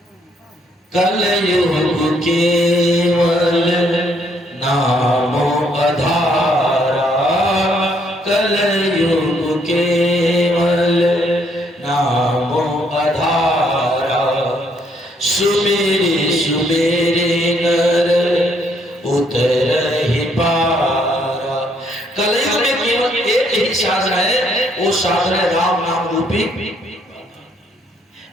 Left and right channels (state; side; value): normal; both; correlation 0.69